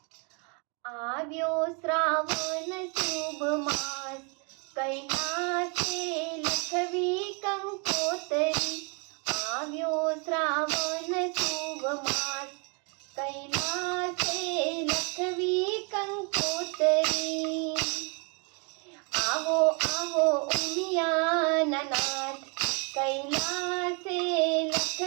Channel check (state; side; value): quieter; left; 35.0 dB